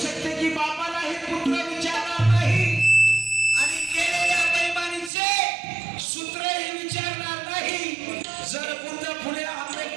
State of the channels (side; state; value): left; drops out; at 5.1 s